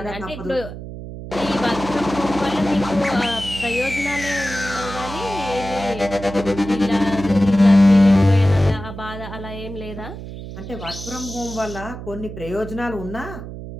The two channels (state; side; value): noise; right; hum, 11 dB below the sound